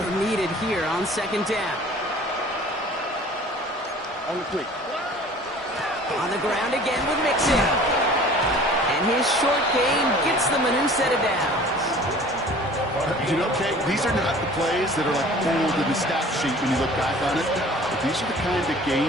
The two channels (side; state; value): both; normal; correlation 0.47